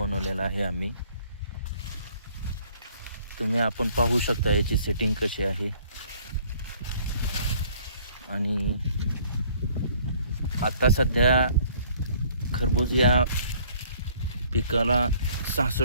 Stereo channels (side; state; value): both; inverted; correlation -0.58